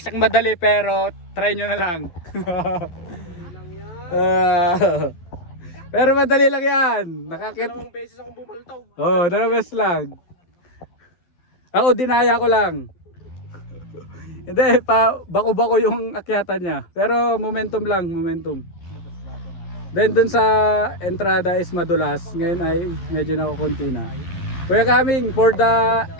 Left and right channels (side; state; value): right; late; 12 ms